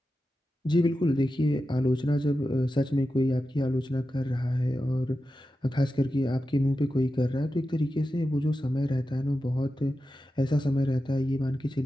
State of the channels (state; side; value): normal; both; correlation 0.91